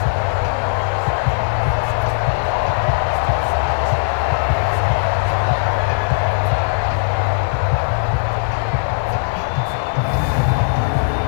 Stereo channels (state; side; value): silent; right; 57 dB below the other